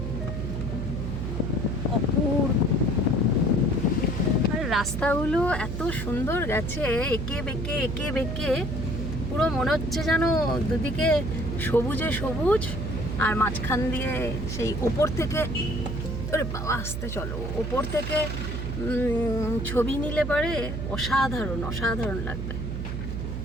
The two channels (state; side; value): noise; right; hum, 4 dB below the sound